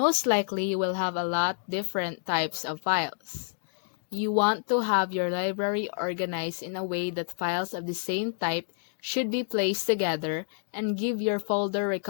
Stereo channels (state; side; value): silent; right; digital silence